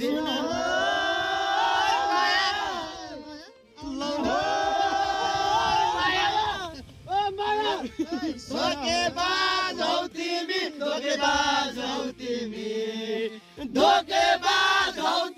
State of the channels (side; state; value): both; identical; correlation 1.00